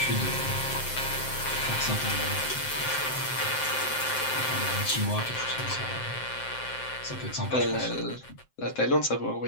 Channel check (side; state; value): right; late; 7.7 ms